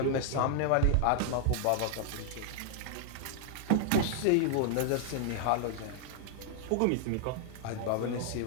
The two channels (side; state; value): both; different; correlation 0.00